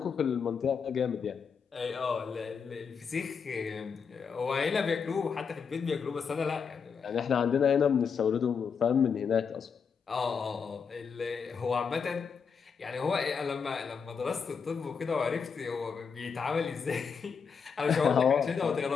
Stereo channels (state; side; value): quieter; right; 6.1 dB